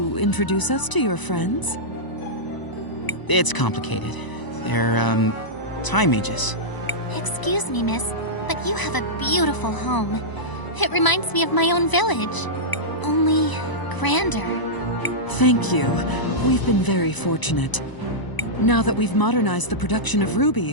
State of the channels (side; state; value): right; late; 1.0 ms